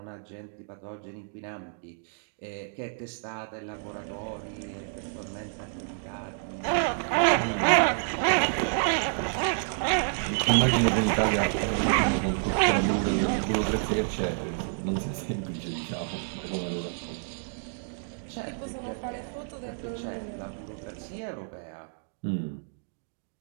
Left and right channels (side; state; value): left; silent; digital silence